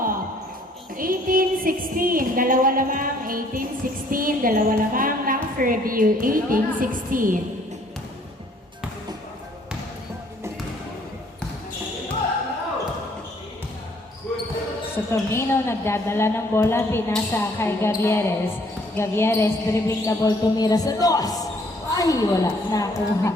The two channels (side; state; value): both; normal; correlation 0.62